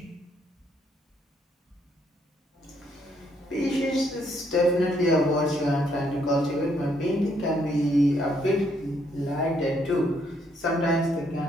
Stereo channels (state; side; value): normal; both; correlation 0.71